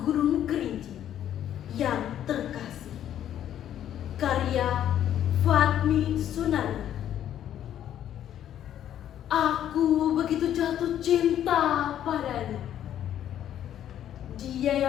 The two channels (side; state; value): right; quieter; 10.8 dB